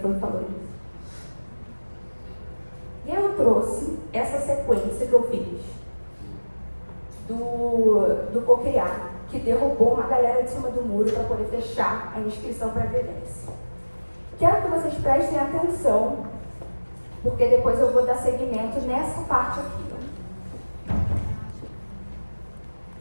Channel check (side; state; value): both; inverted; correlation -1.00